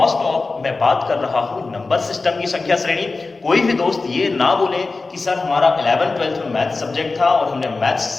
ऑफ मैं बात कर रहा हूं नंबर सिस्टम की संख्या श्रेणी। कोई भी दोस्त ये ना बोले कि सर हमारा 11th-12th में मैथ सब्जेक्ट था और हमने मैथ्स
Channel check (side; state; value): right; quieter; 3.8 dB